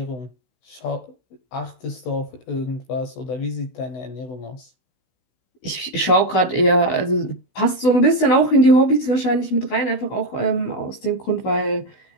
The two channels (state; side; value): late; right; 16 ms